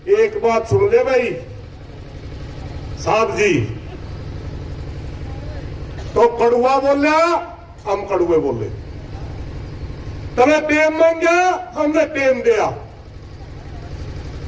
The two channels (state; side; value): identical; both; correlation 1.00